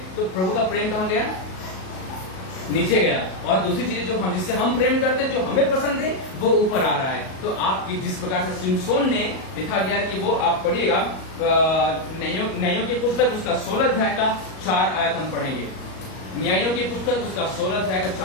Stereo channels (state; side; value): late; right; 38 ms